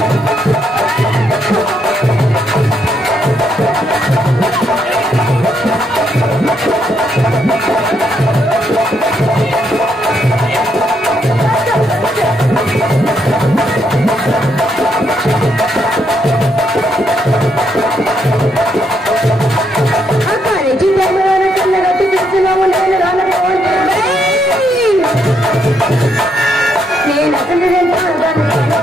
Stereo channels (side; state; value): both; normal; correlation 0.76